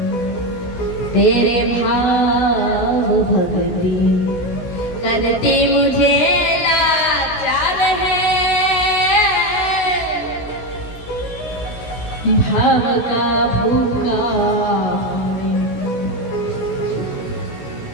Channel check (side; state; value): right; late; 17 ms